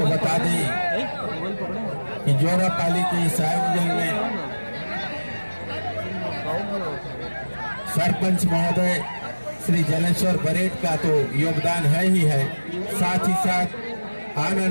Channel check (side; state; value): both; inverted; correlation -1.00